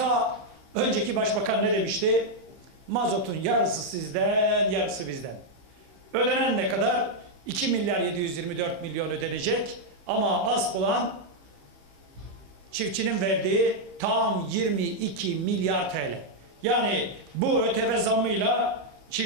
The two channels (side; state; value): left; late; 15 ms